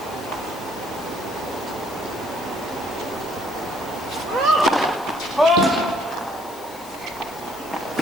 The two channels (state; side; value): noise; left; hiss, 17 dB below the sound